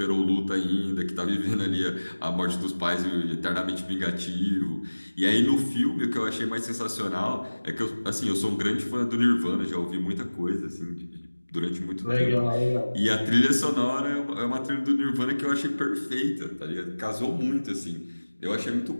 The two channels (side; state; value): both; inverted; correlation -1.00